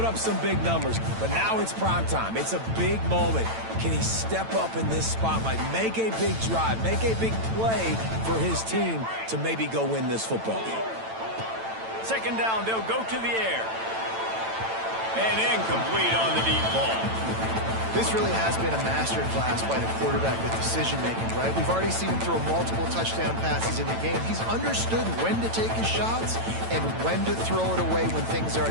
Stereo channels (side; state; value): left; late; 9.0 ms